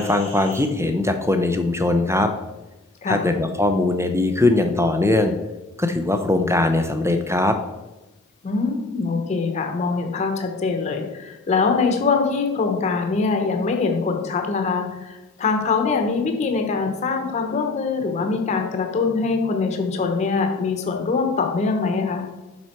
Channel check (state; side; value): quieter; right; 3.0 dB